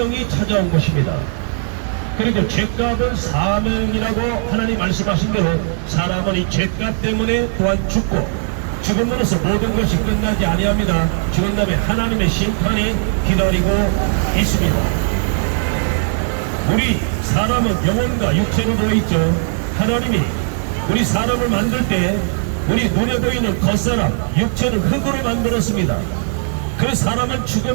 찾아온 것입니다. 그리고 죄값은 사명이라고 하나님 말씀하신 대로 사람은 이 죄값 때문에 또한 죽고 죽음으로써 모든 것이 끝나지 아니합니다. 죽은 다음에 하나님의 심판이 기다리고 있습니다. 우리 사람은 영혼과 육체로 되어 있죠. 하나님이 우리 사람을 만들 때 우리 눈에 보이는 겉사람, 육체는 흙으로 만들었습니다. 그 사람은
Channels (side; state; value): left; silent; digital silence